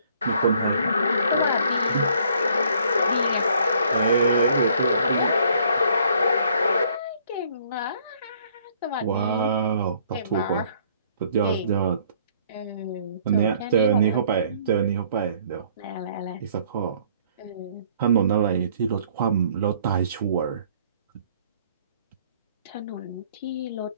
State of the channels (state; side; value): inverted; both; correlation -0.61